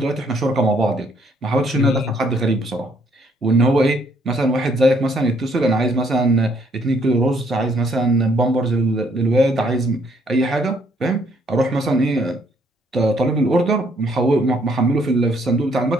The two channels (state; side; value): normal; both; correlation 0.68